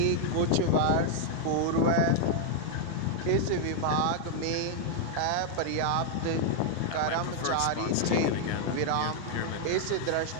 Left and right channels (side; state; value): both; different; correlation 0.00